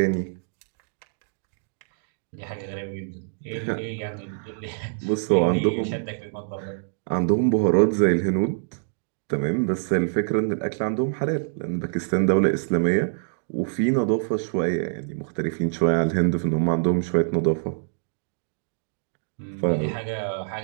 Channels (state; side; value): silent; left; digital silence